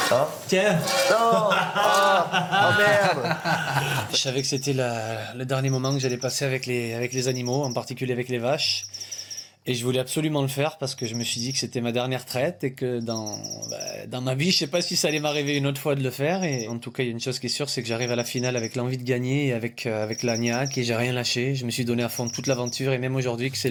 Hein? Tiens. Non. Ah, oh merde. Je savais que c'était le dernier moment que j'allais passer avec les animaux, en particulier avec les vaches. Et je voulais absolument le faire parce que je me suis dit que c'était ma dernière traite et que dans ma vie, je sais pas si ça allait m'arriver une autre fois de le faire. Et en tout cas, il y a une chose qui est sûre, c'est que j'arrive à la finale avec l'envie de gagner et avec la niaque et j'ai rien lâché. Je me suis donné à fond toute l'aventure et même aujourd'hui que c'est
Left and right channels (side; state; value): both; identical; correlation 1.00